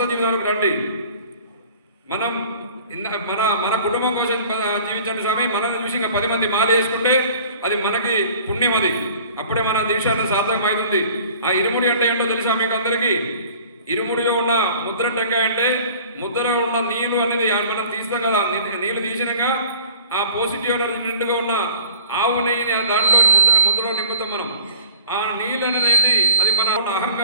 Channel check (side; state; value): both; inverted; correlation -0.48